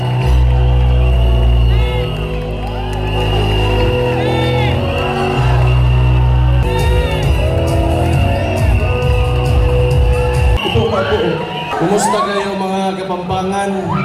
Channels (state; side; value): identical; both; correlation 1.00